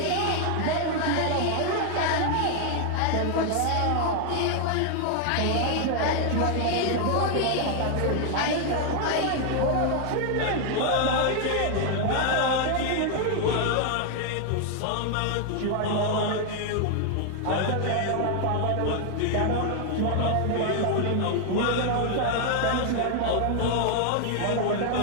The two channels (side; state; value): both; different; correlation 0.00